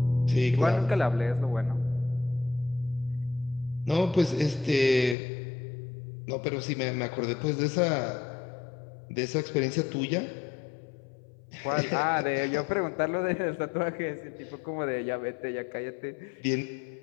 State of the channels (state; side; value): drops out; right; at 5.2 s